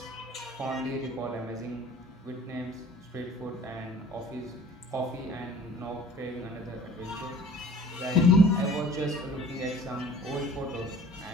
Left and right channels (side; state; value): both; normal; correlation 0.48